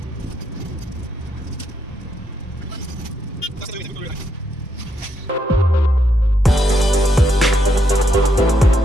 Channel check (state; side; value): normal; both; correlation 0.78